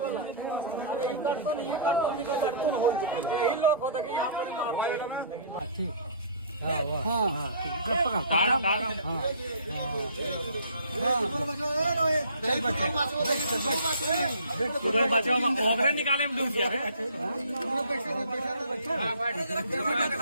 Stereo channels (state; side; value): inverted; both; correlation -0.49